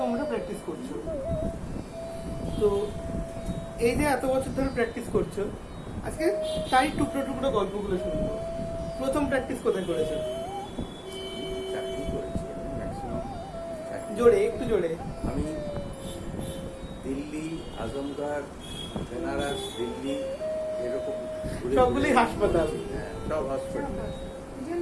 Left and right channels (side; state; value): both; identical; correlation 1.00